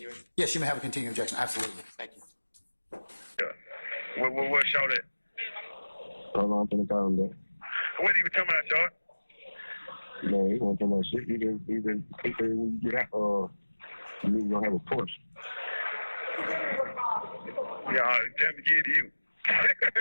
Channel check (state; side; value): inverted; both; correlation -1.00